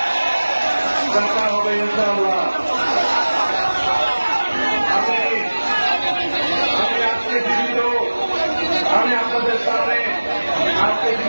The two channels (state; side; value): inverted; both; correlation -1.00